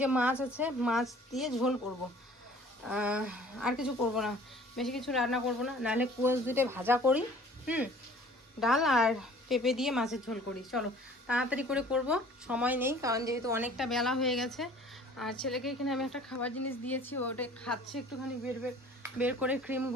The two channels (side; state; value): both; normal; correlation 0.50